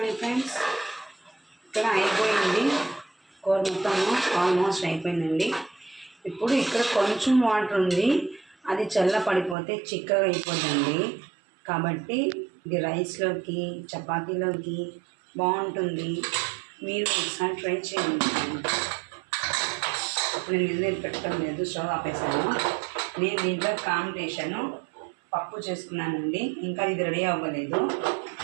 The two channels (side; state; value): left; drops out; at 9.6 s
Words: ఫ్రెండ్స్, ఇక్కడ అయిపోయింది కూర మొత్తము, ఆల్మోస్ట్ అయిపోయిందండి. ఇప్పుడు ఇక్కడ కొంచెం వాటర్ ఉంది, అది చల్లపడిపోతే చిక్కగా అయిపోద్దండి. కాబట్టి ఇది రైస్లోకి, చపాతీలోకి బాగుంటుంది. మీరు ఒకసారి ట్రై చేయండి. ఇప్పుడు నేను నీళ్ళు పెట్టడం లేదు, స్టవ్ ఆపేసాను. నేను దీంట్లో కాంబినేషను పప్పు చేసుకున్నానండి. ఇంకా ఇది రెడీ అవ్వలేదు.